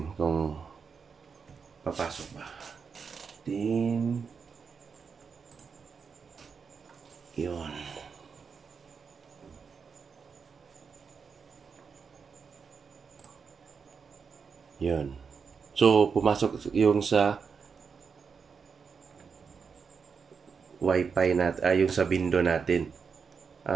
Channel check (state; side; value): quieter; left; 5.8 dB